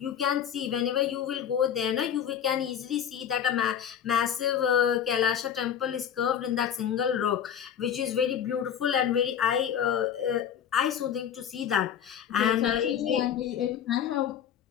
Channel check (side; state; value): right; quieter; 8.9 dB